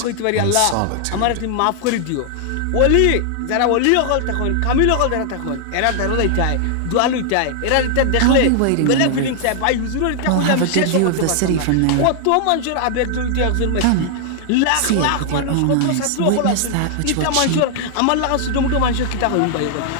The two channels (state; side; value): different; both; correlation 0.00